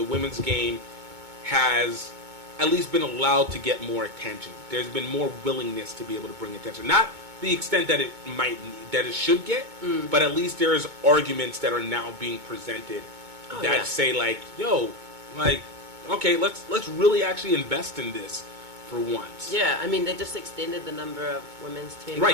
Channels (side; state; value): left; late; 2.2 ms